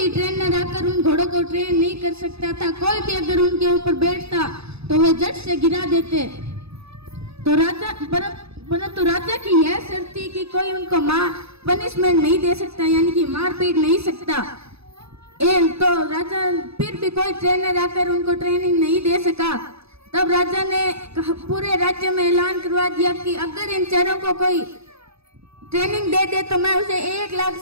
ट्रेनर आकर उन घोड़ों को ट्रेन नहीं कर सकता था। कोई भी अगर उनके ऊपर बैठता तो वे झट से गिरा देते। तो परंतु राजा की यह शर्त थी कि कोई उनको पनिशमेंट नहीं दे सकता, यानी कि मार पीट नहीं सकता। तो राजा फिर भी कोई ट्रेनर आकर उनको ट्रेनिंग नहीं दे सका। तब राजा ने पूरे राज्य में ऐलान करवा दिया कि अगर इन चारों को कोई ट्रेनिंग दे दे तो मैं उसे 1 लाख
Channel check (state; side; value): late; left; 0.79 ms